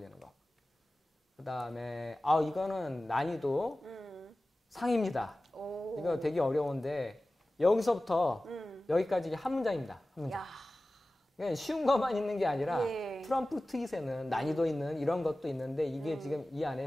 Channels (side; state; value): both; normal; correlation 0.96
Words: 거. 그 다음에 이거는 난이도 상입니다. 이거 되게 어려운데 여기서부터 여기까지 한 문장입니다. 한 문장. 그러니까 쉬운 것만 있는 게 아니라 트럼프 트윗에는 난이도 있는 이런 것도 있는데 이게 지금 이 안에